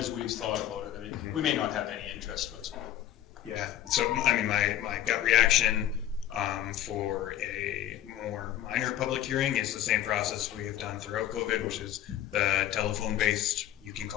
we've thought about it. I mean, we may not have any interest whatsoever. Yeah, so I mean, my gut reaction for a more minor public hearing is the same process we have done throughout COVID, which is the telephone based. You can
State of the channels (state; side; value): quieter; right; 12.0 dB